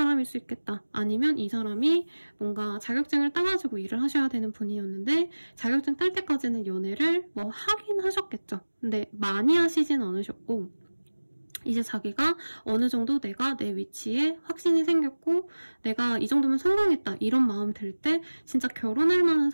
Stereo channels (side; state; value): both; inverted; correlation -1.00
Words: 수 있겠다. 아니면 이 사람이 뭔가 자격증을 따가지고 일을 하셔야 되는 분이었는데 자격증 딸 때까지는 연애를 뭐 하긴 하셨겠죠. 근데 많이 하시진 않으셨고 이제 자기가 어느 정도 내가 내 위치에 확신이 생겼고 내가 이 정도면 성공했다 이런 마음 들 때 진짜 결혼할 만한